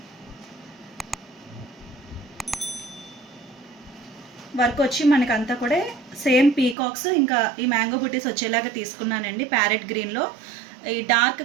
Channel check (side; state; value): left; drops out; at 6.8 s